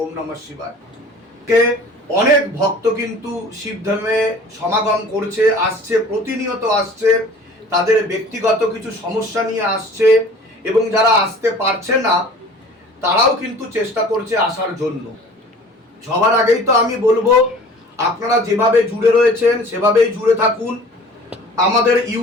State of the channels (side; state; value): both; normal; correlation 0.46